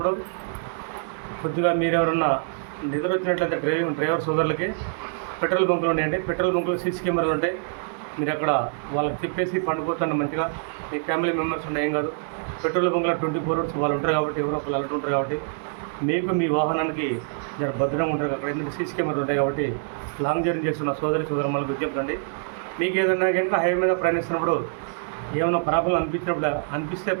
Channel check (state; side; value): silent; left; 60 dB below the other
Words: కొద్దిగా మీరు ఎవరన్నా నిద్ర వచ్చినట్లయితే డ్రైవర్ సోదరులకి పెట్రోల్ బంకులు ఉన్నాయండి. పెట్రోల్ బంకులు సీసీ కెమెరాలు ఉంటాయి. మీరు అక్కడ వాళ్ళకి చెప్పేసి పండుకోకుండా మంచిగా మీ ఫ్యామిలీ మెంబర్స్ ఉండే ఏం కాదు. పెట్రోల్ బంకులో 24 hours వాళ్ళు ఉంటారు కాబట్టి, ఎవరో ఒకళ్ళు అలర్ట్ ఉంటారు కాబట్టి మీకు మీ వాహనానికి జర భద్రంగా ఉంటారు. అక్కడ ఎందుకు సీసీ కెమెరాలు ఉంటాయి కాబట్టి లాంగ్ జర్నీ చేస్తున్న సోదరులకు విజ్ఞప్తి. మీకు ఏదన్నా కనుక హైవే మీద ప్రయాణిస్తున్నప్పుడు ఏమైనా ప్రాబ్లం అనిపిస్తే